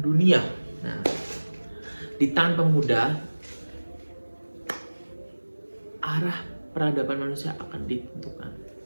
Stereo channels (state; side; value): inverted; both; correlation -1.00